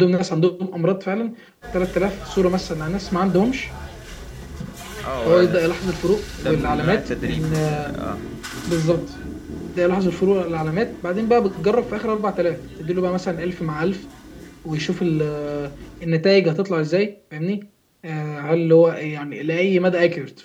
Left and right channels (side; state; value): both; identical; correlation 1.00